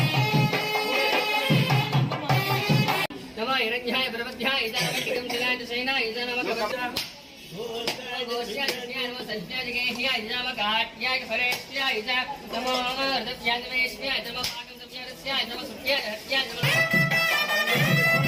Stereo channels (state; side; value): identical; both; correlation 1.00